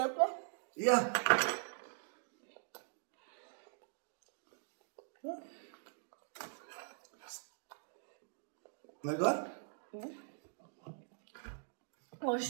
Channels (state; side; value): silent; left; digital silence